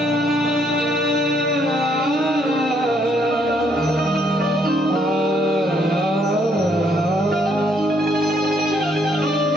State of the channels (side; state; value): both; normal; correlation 0.70